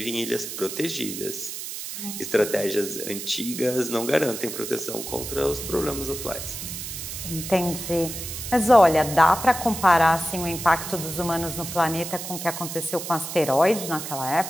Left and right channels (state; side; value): noise; right; hiss, 7 dB below the sound